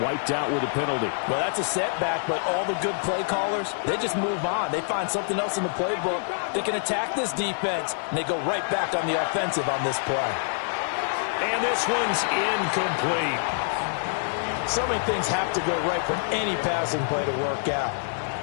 out with a penalty. Well, that's a setback, but all the good play callers, they just move on. They find something else in the playbook. They can attack this defense, and they go right back on the offensive on this play. And this one's incomplete. So many things have to go right for any passing play to work out.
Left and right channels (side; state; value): right; silent; 61 dB below the other